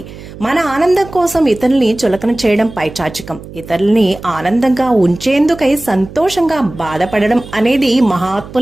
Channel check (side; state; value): right; noise; hum, 15 dB below the sound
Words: మన ఆనందం కోసం ఇతరుల్ని చులకన చేయడం పైచాచికం. ఇతరుల్ని ఆనందంగా ఉంచేందుకై సంతోషంగా బాధపడడం అనేది